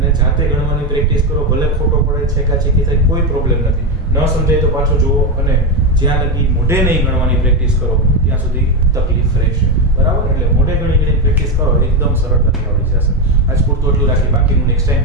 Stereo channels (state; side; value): normal; both; correlation 0.10